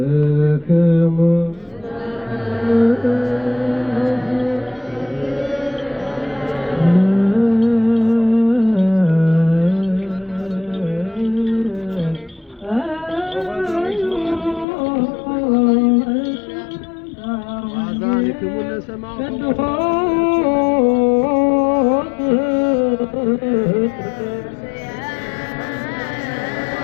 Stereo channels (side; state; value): right; drops out; at 14.7 s